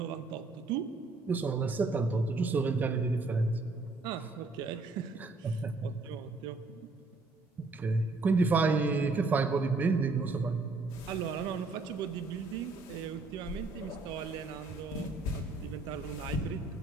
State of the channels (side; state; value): left; quieter; 3.6 dB